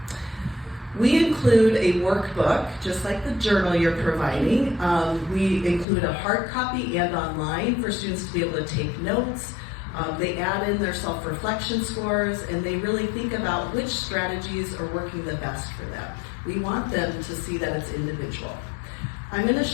We include a workbook, just like the journal you're providing. We include a hard copy and online for students to be able to take notes. They add in their self-reflection scores, and they really think about which strategies are working the best for them. We want them to see that it's individual. I'm going to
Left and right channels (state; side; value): drops out; right; at 5.9 s